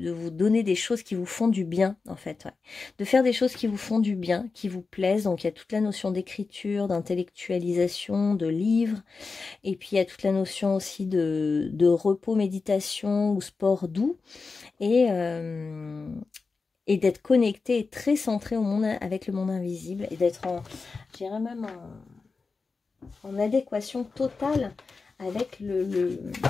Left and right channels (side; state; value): right; quieter; 4.3 dB